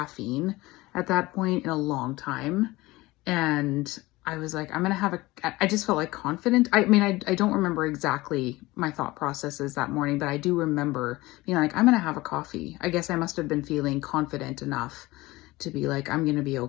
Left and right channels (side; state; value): right; quieter; 20.0 dB